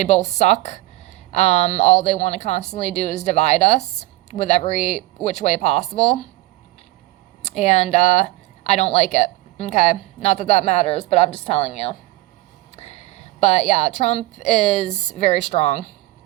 both suck. All they want to constantly do is divide us with every which way possible. And I don't like it. Okay? Not that that matters, but I'm just telling you. But yeah, Trump is very strong.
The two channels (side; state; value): left; quieter; 18.5 dB